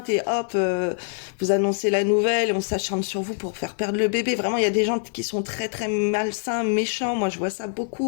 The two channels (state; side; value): silent; right; 62 dB below the other